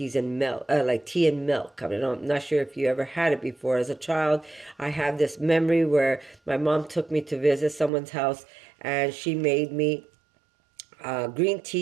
and milk, like tea and milk. I mean, I'm not sure if you ever had it before. As a child, I have this memory where my mom took me to visit someone's house, and she made me green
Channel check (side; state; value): left; drops out; at 7.9 s